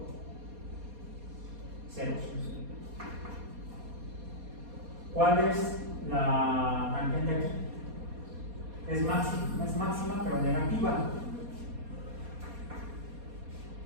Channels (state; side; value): late; left; 4.2 ms